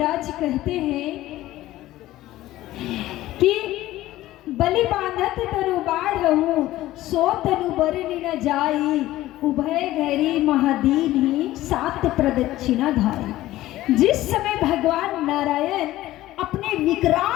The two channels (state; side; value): quieter; right; 15.6 dB